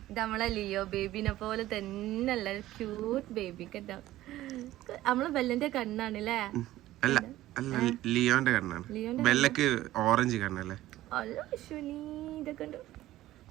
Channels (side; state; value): left; quieter; 15.3 dB